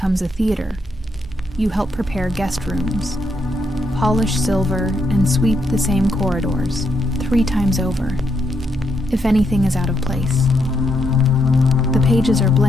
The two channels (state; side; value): normal; both; correlation 0.78